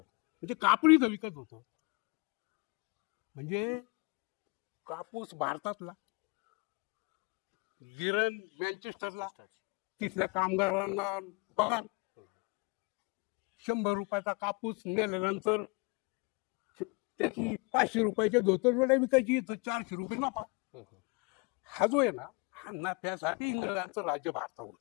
म्हणजे कापड इथं विकत होतं. म्हणजे कापूस भारतातला, गिरण मँचेस्टरला, तिथल्या कामगारांना पगार. 100 रुपयाचा कापूस नेल्यानंतर त्याची 500 रुपयाच्या धोतर विकायची, 400 रुपये नफा. हा जो आहे ना, हा नफ्यासाठी इंग्रजांचं राज्य भारतावर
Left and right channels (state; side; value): quieter; right; 30.1 dB